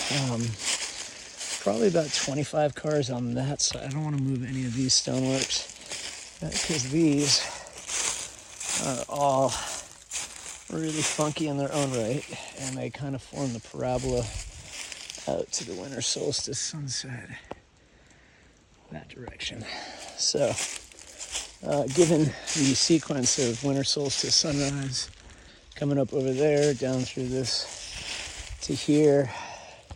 probably about 25 cars on that side. I don't want to move any of these stoneworks, because these are all really funky in their own right, and they kind of form the parabola out to the winter solstice sunset, that direction. So, given the sequence of winter solstice sunrise coming up over there, down through this to here,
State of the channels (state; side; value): identical; both; correlation 1.00